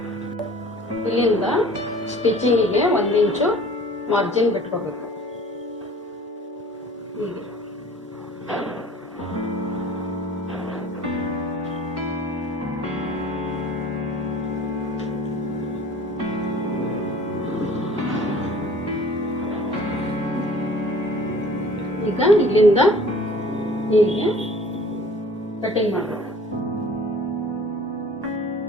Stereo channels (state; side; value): normal; both; correlation 0.48